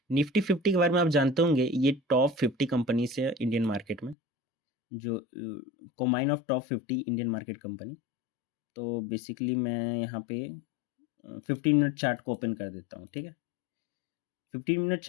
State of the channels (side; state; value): right; drops out; at 4.2 s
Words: निफ्टी 50 के बारे में आप जानते होंगे, ये टॉप 50 कंपनी से इंडियन मार्केट में, जो combine of top 50 Indian market company. तो बेसिकली मैं यहाँ पे 15 मिनट चार्ट को ओपन कर देता हूँ, ठीक है। 15 मिनट